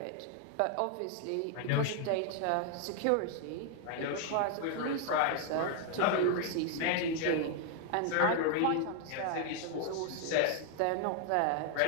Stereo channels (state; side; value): different; both; correlation 0.00